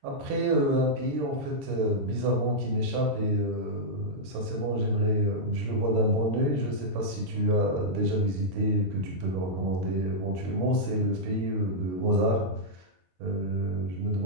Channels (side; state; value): left; late; 23 ms